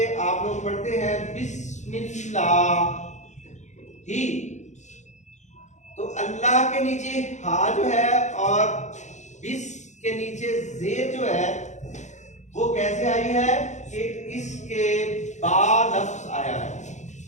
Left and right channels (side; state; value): right; late; 0.34 ms